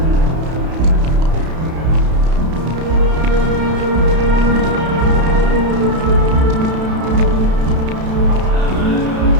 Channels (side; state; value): left; late; 31 ms